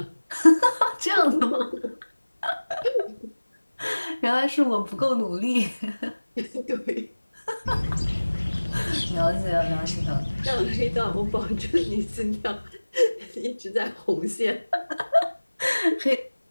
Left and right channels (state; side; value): inverted; both; correlation -1.00